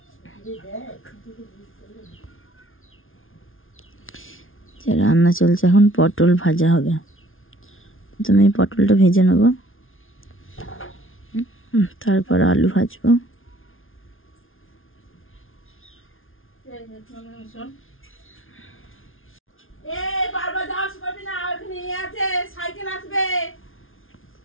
রান্না চলছে। এখন পটল ভাজা হবে। প্রথমে পটলটা ভেজে নেব, তারপর আলু ভাজবো।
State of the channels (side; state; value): right; late; 0.59 ms